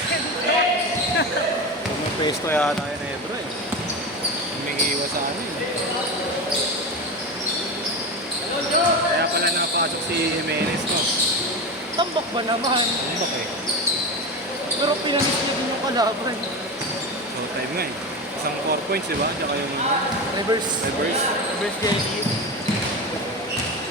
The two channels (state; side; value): normal; both; correlation 0.22